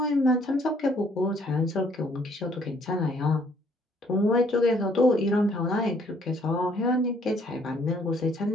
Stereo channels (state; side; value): normal; both; correlation 0.64